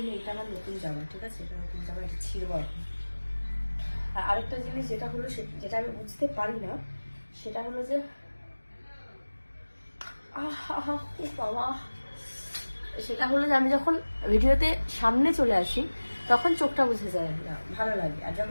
এটা আমার নতুন জামা, ঠিক আছে, এটা নতুন জামা, এটা ছিঁড়বো এখন। আর আরেকটা জিনিস যেটা হলো, যেটা আমি বুঝতে পারি না, সেটা হলো যে বাবা, সেটা হলো যে আমি যখন ভিডিওতে সামনে চলে আসি তখন চোখটা বুঝে যায় না, ভালো লাগে। আর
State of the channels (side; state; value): both; inverted; correlation -1.00